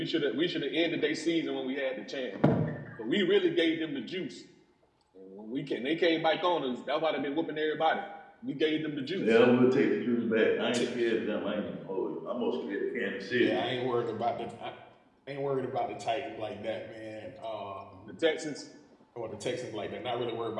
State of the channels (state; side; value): identical; both; correlation 1.00